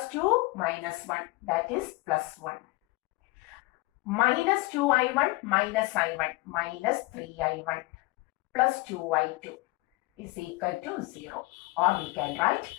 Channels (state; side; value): quieter; right; 22.7 dB